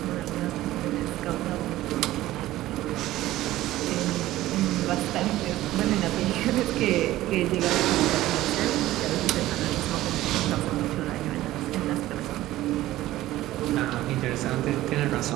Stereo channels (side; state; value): left; quieter; 15.6 dB